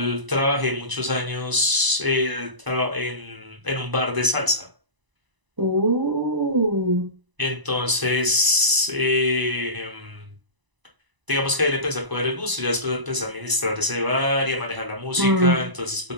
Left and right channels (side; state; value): left; late; 1.0 ms